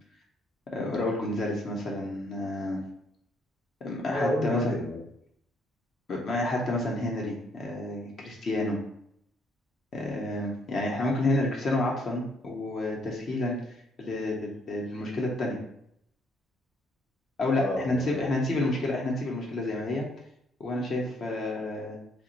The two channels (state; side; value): normal; both; correlation 0.68